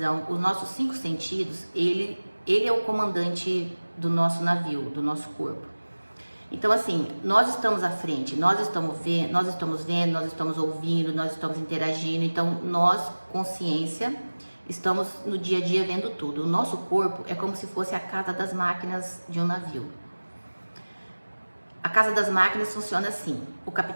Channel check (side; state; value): both; inverted; correlation -1.00